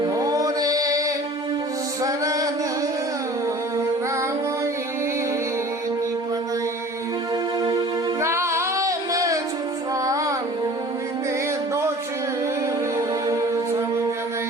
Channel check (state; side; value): normal; both; correlation 0.45